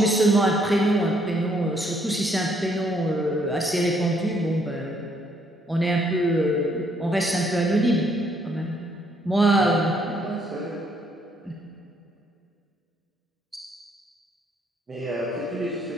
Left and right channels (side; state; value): both; normal; correlation 0.69